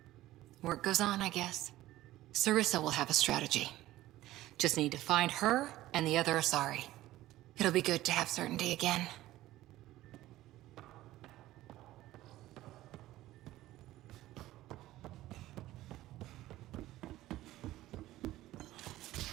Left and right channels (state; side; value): quieter; left; 15.7 dB